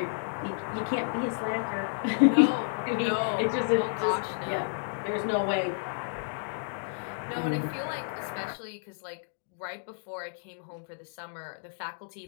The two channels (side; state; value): right; silent; digital silence